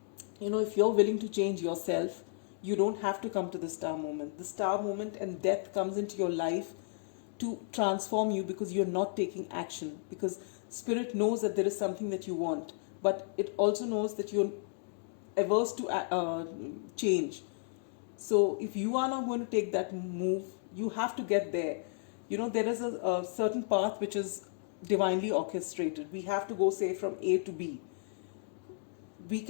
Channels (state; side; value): silent; right; digital silence